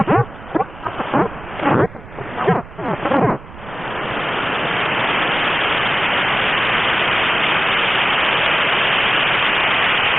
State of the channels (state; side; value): noise; right; rumble, 17 dB below the sound